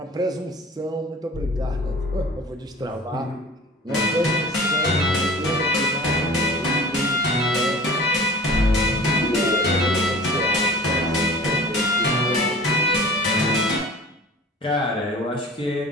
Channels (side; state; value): both; normal; correlation 0.43